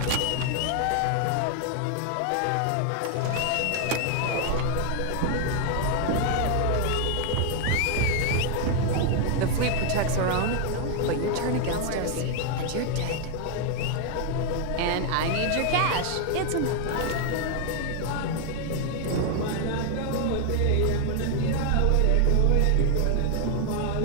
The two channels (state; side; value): different; both; correlation 0.00